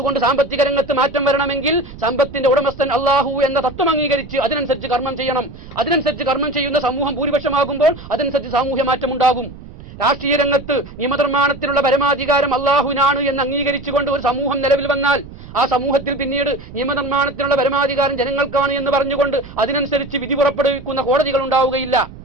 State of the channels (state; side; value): noise; right; rumble, 16 dB below the sound